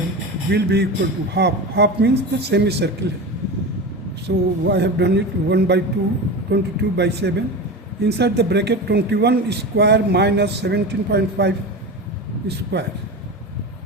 will be equal to half. Half means the semicircle. So I have done it 1 by 2, 22 by 7. Inside the bracket 21 square minus 17.5 square.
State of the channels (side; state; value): both; normal; correlation 0.26